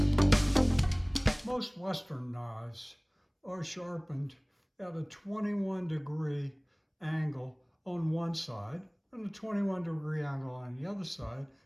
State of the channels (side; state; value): both; identical; correlation 1.00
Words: Most Western knives are sharpened at a 21-degree angle on one side and a 21-degree angle on the other side,